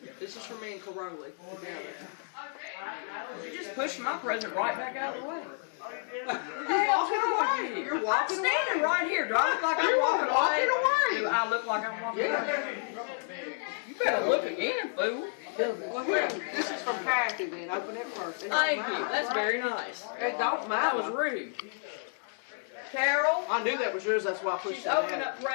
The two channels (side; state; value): right; silent; 57 dB below the other